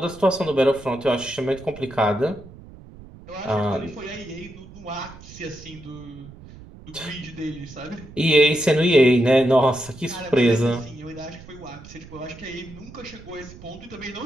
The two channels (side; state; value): right; noise; rumble, 18 dB below the sound